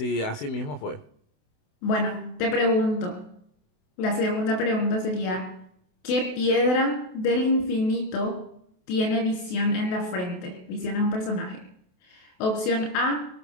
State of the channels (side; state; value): right; late; 28 ms